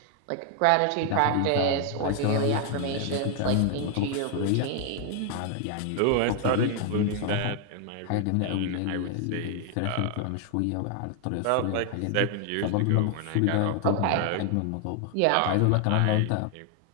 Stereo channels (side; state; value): both; different; correlation 0.00